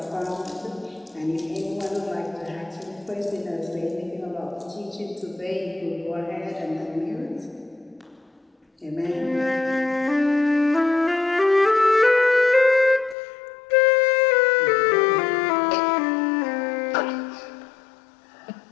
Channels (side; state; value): right; drops out; at 13.2 s